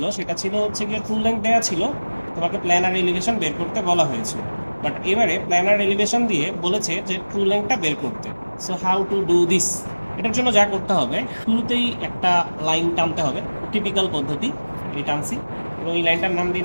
সেটা ছিল হচ্ছে গিয়ে ট্রু লেন্থ দেওয়া ছিল, তোমাকে প্ল্যানার এলিভেশন বের করতে বলা হয়েছিল। বাট এবারে প্ল্যানার এলিভেশন দিয়ে বলেছে যে ট্রু লেন্থটা বের করতে। So how to do this? এটার জন্য যা করতে হবে, শুরুতেই একটা লাইন টানতে হবে, টিপিক্যাল পদ্ধতি। এই টানছি, এবং এই লাইনটার নাম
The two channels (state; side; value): inverted; both; correlation -1.00